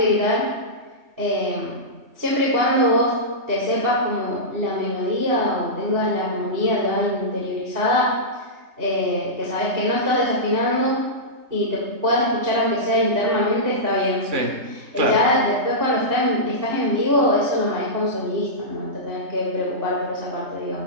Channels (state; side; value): late; left; 3.2 ms